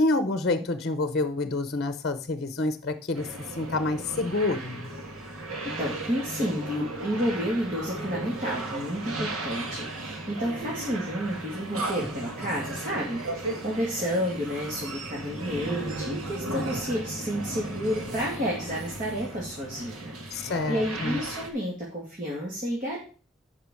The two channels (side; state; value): both; normal; correlation 0.46